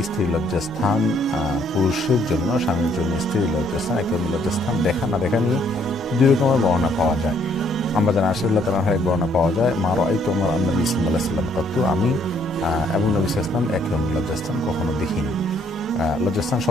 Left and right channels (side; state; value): both; normal; correlation 0.67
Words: স্ত্রীর লজ্জাস্থান পুরুষের জন্য, স্বামীর জন্য স্ত্রীর লজ্জাস্থান, একদম লজ্জাস্থান দেখা না দেখা নিয়ে দুই রকমের বর্ণনা পাওয়া যায়। আমরা জানা আশরাল্লাহ তাআলার এক বর্ণনা পাওয়া যায়, মা রাআইতু আমার নবী সাল্লাল্লাহু আলাইহি ওয়াসাল্লাম কত, আমি এবং নবী সাল্লাল্লাহু আলাইহি ওয়াসাল্লাম একদম লজ্জাস্থান কখনো দেখিনি। লজ্জাস্থান